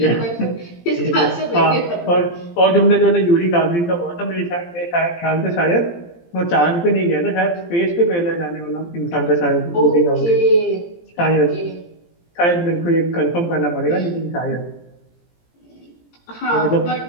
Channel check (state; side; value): late; right; 17 ms